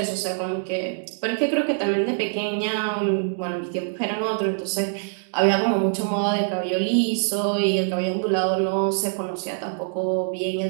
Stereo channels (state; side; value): silent; left; digital silence